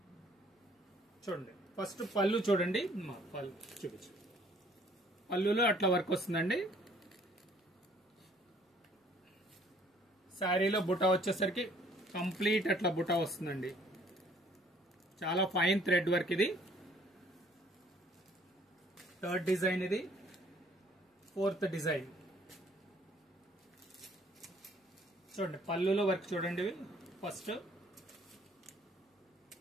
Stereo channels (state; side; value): normal; both; correlation 0.60